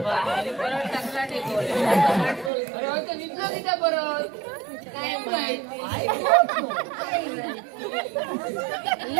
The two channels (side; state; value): left; drops out; at 2.5 s